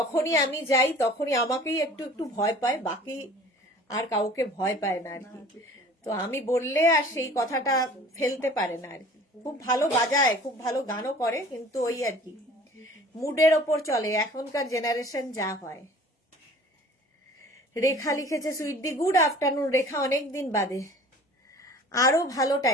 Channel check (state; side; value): normal; both; correlation 0.47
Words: আমি যাই তখনই আমাকেই একটু একটু ভয় পায়, বাকি আর কাউকে ভয় পায় না আর কি। তো আমি বললে আর সেই কথাটা ফেলতে পারে না আর কি। খুব ভালো বাজায়, খুব ভালো গানও করে, কিন্তু ওই আর কি মুডের ওপর চলে, এখনকার জেনারেশন যা হয়। রেখা লিখেছে সুইট গুড আফটারনুন রেখা, অনেক দিন বাদে। আরো ভালো